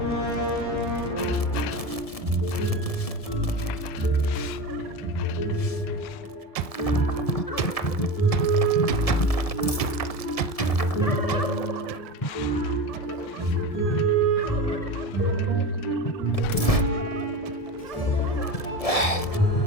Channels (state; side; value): late; right; 1.7 ms